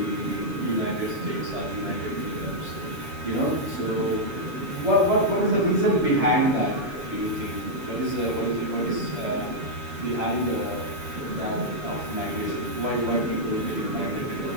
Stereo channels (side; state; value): left; late; 7.1 ms